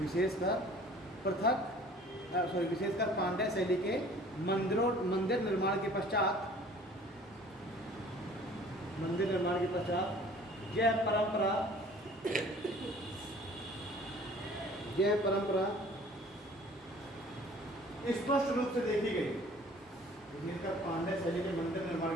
पांड्य शैली के मंदिर निर्माण के पश्चात यह परंपरा स्पष्ट रूप से देखी गई। भीमकर पांड्य शैली के मंदिर निर्माण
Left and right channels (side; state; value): both; normal; correlation 0.50